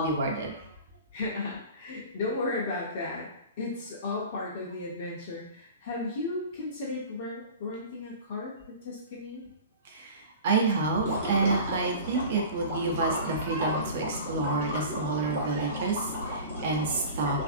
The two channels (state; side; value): inverted; both; correlation -0.37